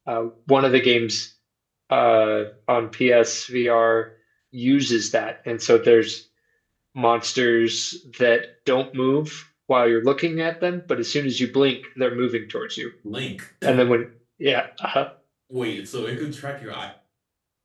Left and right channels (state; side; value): identical; both; correlation 1.00